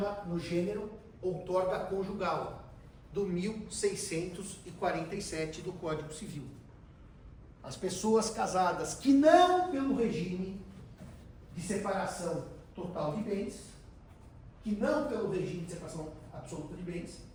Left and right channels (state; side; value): identical; both; correlation 1.00